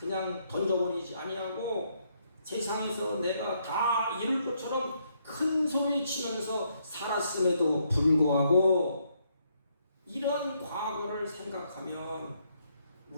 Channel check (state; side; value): inverted; both; correlation -0.74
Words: 던져버리지 아니하고 세상에서 내가 다 이룰 것처럼 큰 소리 치면서 살았음에도 불구하고 이런 과거를 생각하면